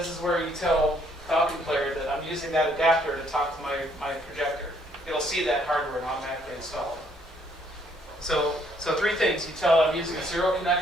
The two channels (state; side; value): normal; both; correlation 0.67